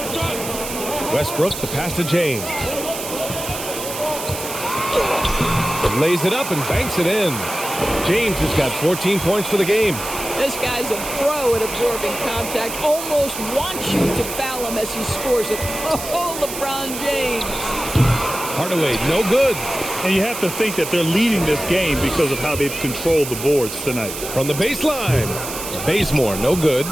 Westbrook, the pass to James. Lays it up and banks it in. James has got 14 points for the game. This guy's a pro at absorbing contact. Almost wants you to foul him as he scores it. Oh, LeBron James. Hardaway, no good. And you have to think that they're leading this game because of how they've controlled the boards tonight. From the baseline, Bazemore, no good.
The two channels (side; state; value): right; noise; hiss, 8 dB below the sound